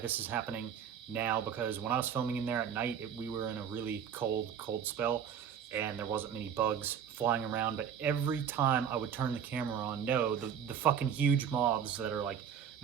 is happening now, because when I was filming in there at night, we were in a really cold spell, and there wasn't many bugs flying around. But every time I would turn the camera on, the fucking huge moths that are like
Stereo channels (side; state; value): left; quieter; 8.2 dB